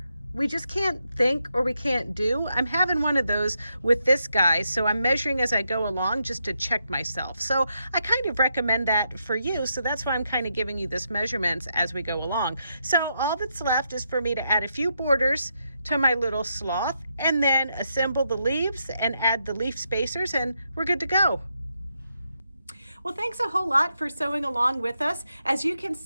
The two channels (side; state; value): both; inverted; correlation -0.81